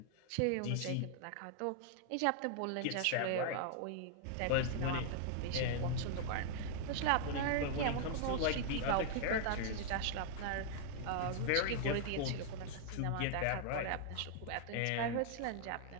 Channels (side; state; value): both; different; correlation -0.01